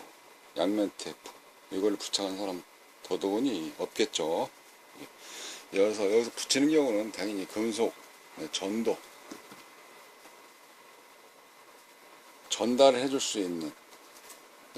양면 테이프 이걸 부착한 사람 더더군이 없겠죠. 여기서 붙이는 경우는 당연히 금속, 전도, 전달을 해줄 수 있는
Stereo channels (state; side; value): identical; both; correlation 1.00